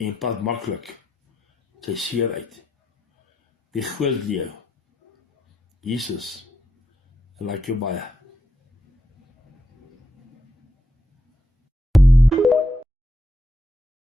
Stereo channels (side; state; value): both; normal; correlation 0.82